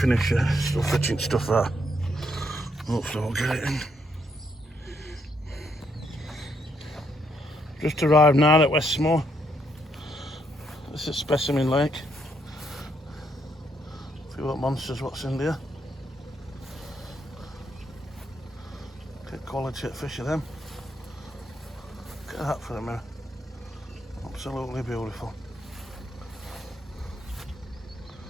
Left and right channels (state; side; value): normal; both; correlation 0.75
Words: yet, still fetching stuff out. Hopefully I'll get it in. Just arrived now at Westmoor. This is Specimen Lake. See what monsters, what's in there. Get quality at fish of them. Look at that for a minute. Absolutely beautiful.